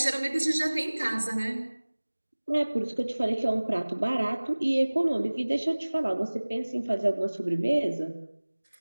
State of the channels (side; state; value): both; inverted; correlation -1.00